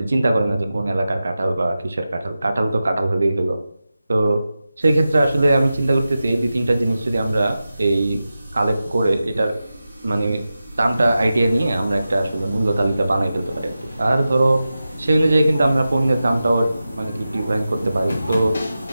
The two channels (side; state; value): both; inverted; correlation -0.93